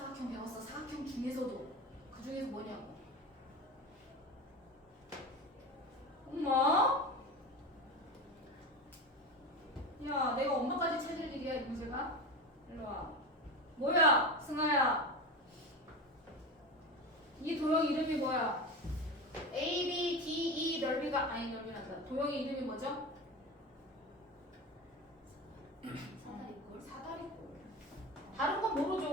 배웠어. 사각형 중에서도 그 중에서 뭐냐고. 엄마? 야 내가 엄마까지 찾을 일이야 이 문제가? 일로 와. 뭐야 승아야. 이 도형 이름이 뭐야? A, B, D, E 넓이가 아니 넓이란다. 도형의 이름이 뭐죠? 사다리꼴. 사다리꼴. 다른 건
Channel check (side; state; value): both; normal; correlation 0.24